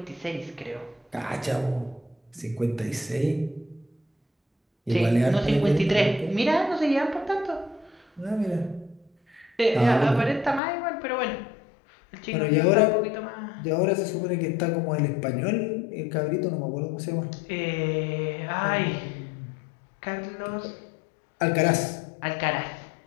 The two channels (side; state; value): right; drops out; at 10.6 s